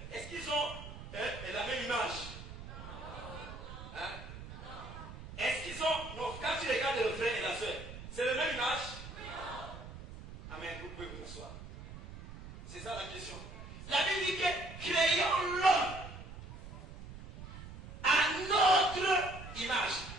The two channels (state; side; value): noise; right; rumble, 12 dB below the sound